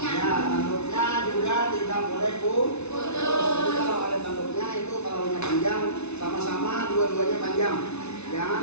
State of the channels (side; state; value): right; late; 0.81 ms